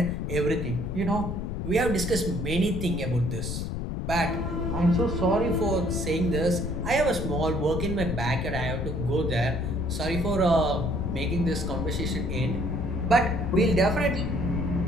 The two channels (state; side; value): noise; left; rumble, 3 dB below the sound